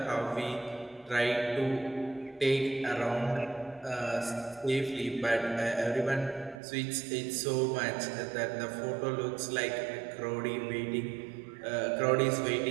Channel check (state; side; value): drops out; left; at 6.6 s